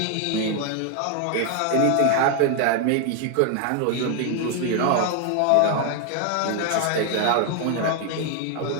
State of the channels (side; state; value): both; different; correlation 0.00